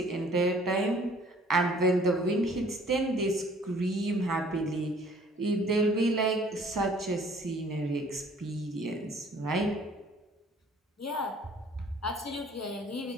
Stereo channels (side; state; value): both; normal; correlation 0.55